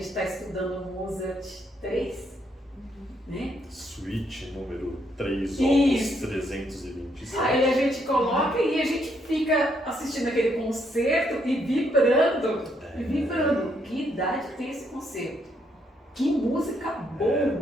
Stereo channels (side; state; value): both; normal; correlation 0.74